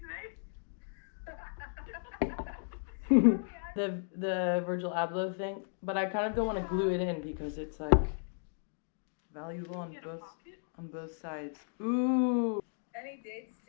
today? The Virgil Abloh thing, but I kind of don't want to glue it in because it's like valuable on both sides. Ooh. Any dates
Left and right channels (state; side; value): silent; right; digital silence